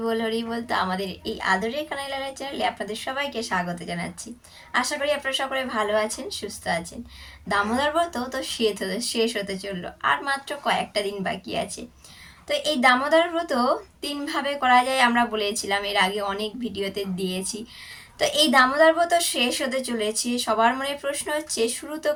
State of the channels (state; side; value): identical; both; correlation 1.00